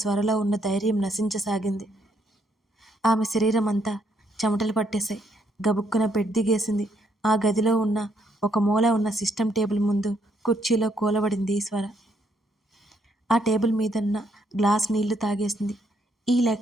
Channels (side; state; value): both; normal; correlation 0.72